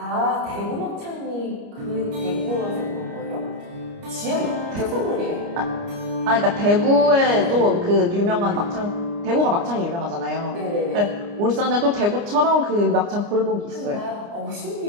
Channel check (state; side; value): late; left; 29 ms